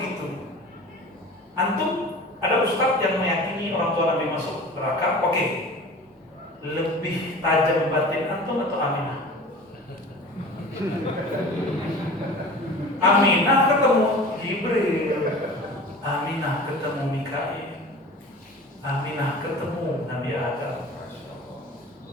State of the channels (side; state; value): both; normal; correlation 0.39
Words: Antum ada ustadz yang meyakini orang tua Nabi masuk neraka, oke. Lebih tajam batin antum atau Aminah? Aminah ketemu Jibril, Aminah ketemu Mikail, Aminah ketemu Nabi Adam,